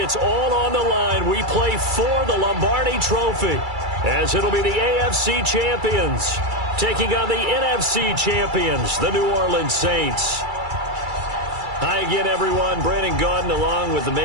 all on the line. We play for the Lombardi Trophy, as it'll be the AFC champions taking on the NFC champions, the New Orleans Saints. Hi again, everyone. Brandon Gaudin along with the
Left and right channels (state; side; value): late; left; 2.3 ms